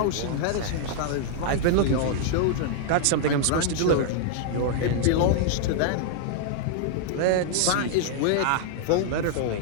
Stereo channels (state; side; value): different; both; correlation -0.01